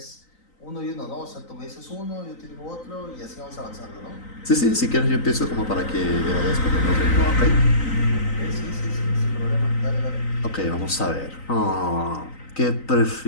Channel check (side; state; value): right; late; 3.9 ms